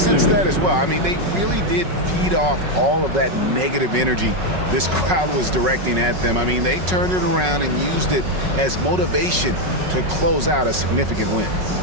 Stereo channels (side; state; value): left; late; 5.4 ms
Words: that as well. I mean, they really did feed off all of that negative energy this crowd was directing at them. I mean, they turned it around and used it as motivation to close out a significant win.